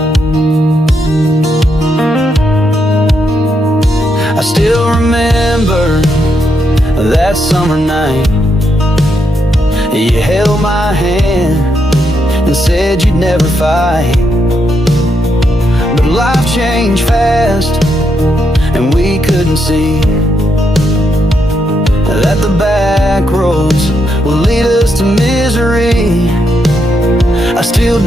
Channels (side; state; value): both; normal; correlation 0.80